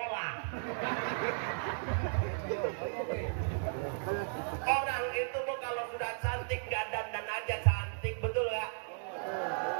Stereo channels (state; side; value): silent; left; digital silence